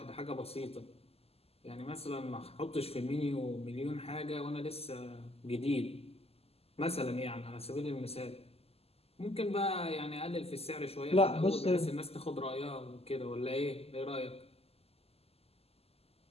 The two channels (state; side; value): late; right; 0.29 ms